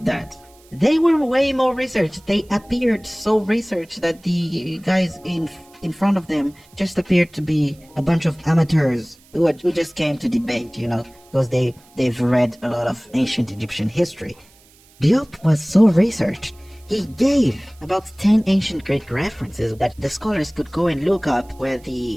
that they were way more researched. They appeared so researched that the guys in front of them just appeared to be a bunch of amateurs who just came to debate, because they've read a lot of ancient Egyptian history. Diop was so researched. He gave about 10 ancient Greek references that the scholars could go and look up, where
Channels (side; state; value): right; noise; hiss, 29 dB below the sound